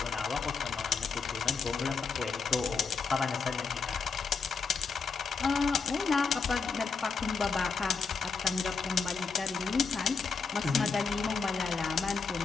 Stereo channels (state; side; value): quieter; right; 5.1 dB